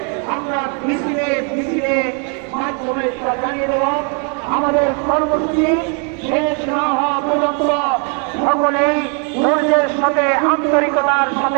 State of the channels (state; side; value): quieter; left; 39.7 dB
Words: আমরা মিছিলে মিছিলে মাধ্যমে জানিয়ে দেব আমাদের কর্মসূচি শেষ না হওয়া পর্যন্ত সকলেই ধৈর্যের সাথে আন্তরিকতার